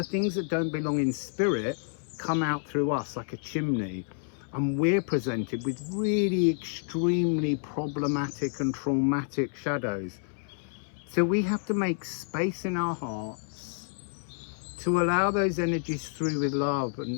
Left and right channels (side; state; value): right; silent; 58 dB below the other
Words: things that don't belong in spirit come out through us like a chimney, and we're presented with really extremely problematic and traumatic shadows. So we have to make space in our hearts to allow those energies through with love